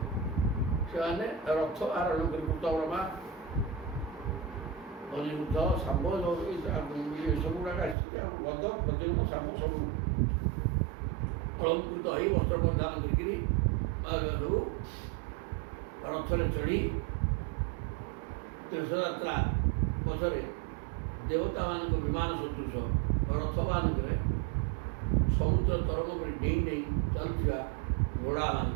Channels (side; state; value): left; drops out; at 8.0 s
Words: ସେମାନେ ରଥ ଆରୋହଣ କରି କୃତବର୍ମା, ଅନିରୁଦ୍ଧ, ଶାମ୍ବ ଏସବୁ ଗୁଡ଼ାକ ଆସିଛନ୍ତି। ଆଉ ଗଦ ପ୍ରଦ୍ୟୁମ୍ନ ଶାମ୍ବ ସବୁ ଅଳଙ୍କୃତ ହୋଇ ବସ୍ତ୍ର ପରିଧାନ କରିକିରି ସବୁ ରଥରେ ଚଢ଼ି ତୀର୍ଥଯାତ୍ରା ପଛରେ ଦେବତାମାନଙ୍କ ବିମାନ ସଦୃଶ ରଥମାନଙ୍କରେ ସମୁଦ୍ର ତରଙ୍ଗ ପରି ଡେଇଁ ଡେଇଁ ଚାଲୁଥିବା